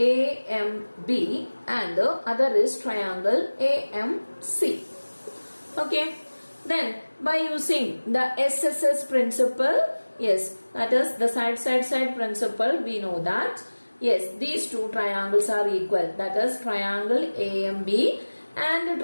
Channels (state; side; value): inverted; both; correlation -1.00